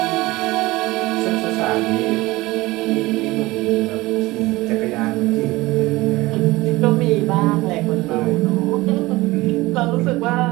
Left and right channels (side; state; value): left; quieter; 20.1 dB